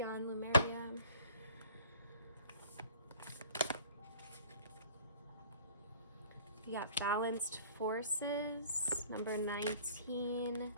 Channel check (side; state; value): both; inverted; correlation -0.51